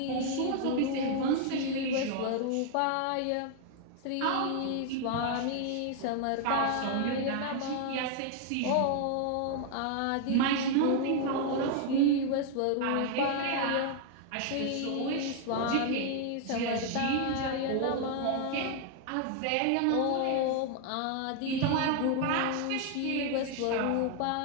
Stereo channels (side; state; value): both; different; correlation 0.00